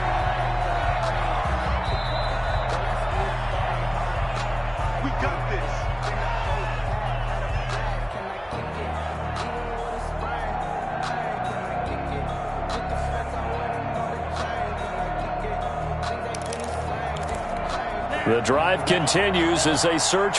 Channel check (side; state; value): both; identical; correlation 1.00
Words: We got this. The drive continues as they search